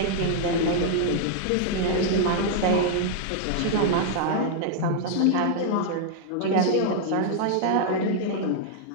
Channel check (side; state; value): both; different; correlation 0.00